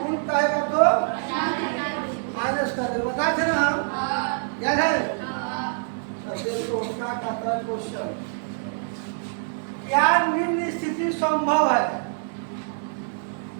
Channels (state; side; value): silent; left; 59 dB below the other